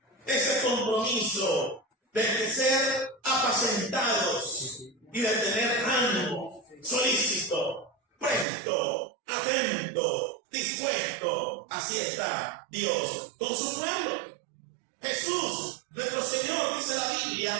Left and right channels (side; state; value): left; drops out; at 8.5 s